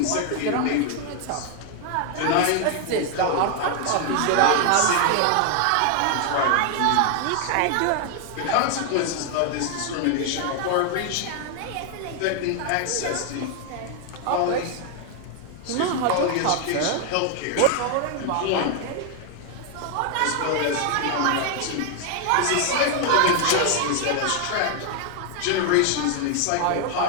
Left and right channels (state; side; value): different; both; correlation 0.00